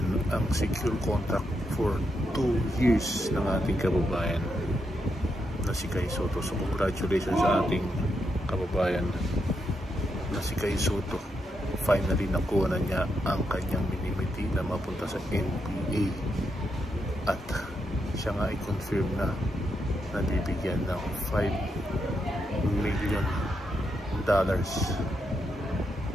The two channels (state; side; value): normal; both; correlation 0.82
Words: ang secure contract for 2 years ng ating kababayan na si Kai Sotto. So congratulations sa ating kababayan na si Kai Sotto. Finally nakuha na niya ang kanyang minimiti na mapunta sa NBA at siya nga i-confirm na bibigyan ng $5 million.